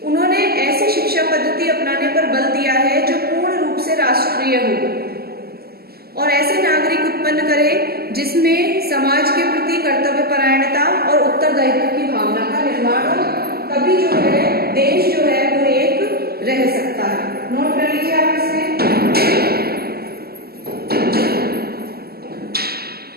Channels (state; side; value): late; left; 0.45 ms